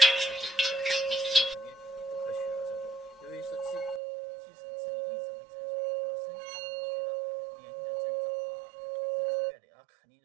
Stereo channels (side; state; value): left; drops out; at 4.0 s